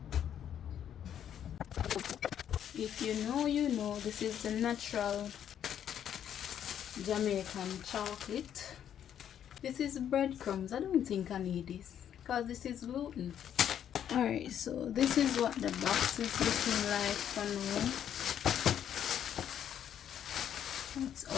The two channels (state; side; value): quieter; right; 9.6 dB